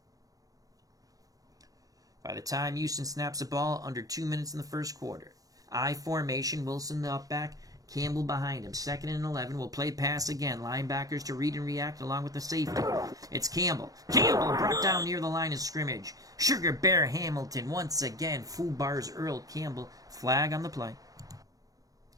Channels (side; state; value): left; late; 0.17 ms